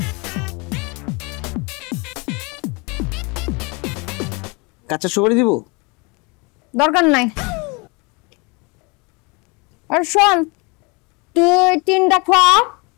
কাঁচা সুপারি দিব? দরকার নাই। আর শোন, তুই 3টা খোয়া,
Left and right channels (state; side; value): quieter; right; 29.0 dB